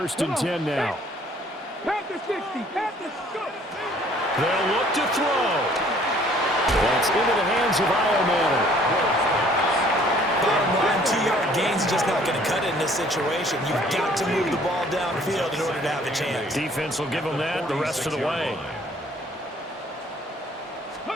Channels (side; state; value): both; normal; correlation 0.58